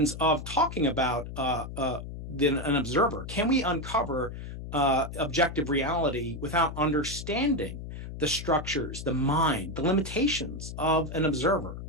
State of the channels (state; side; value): noise; left; hum, 9 dB below the sound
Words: of talking about an observer? Can we uncover objective reality without understanding the structures, the mind, the limitations of an observer?